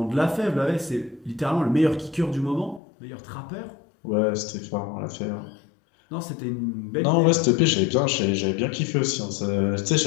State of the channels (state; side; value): drops out; right; at 2.8 s